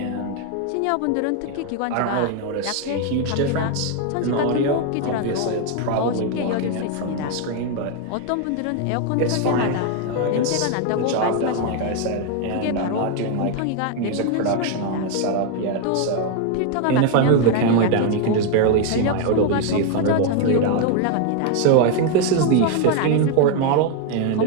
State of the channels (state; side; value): different; both; correlation 0.01